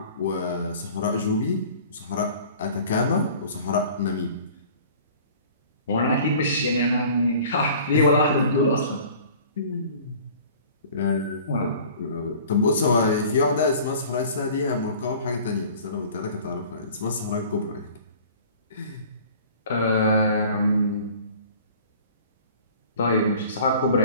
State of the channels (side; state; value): both; inverted; correlation -0.47